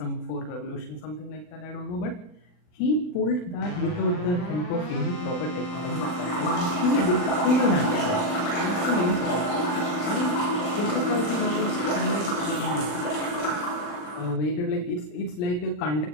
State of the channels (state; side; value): late; right; 39 ms